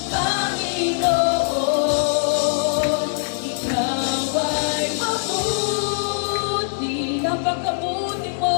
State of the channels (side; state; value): right; silent; digital silence